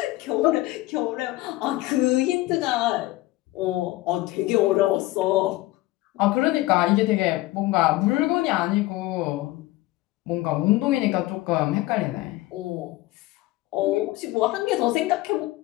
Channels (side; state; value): right; quieter; 18.3 dB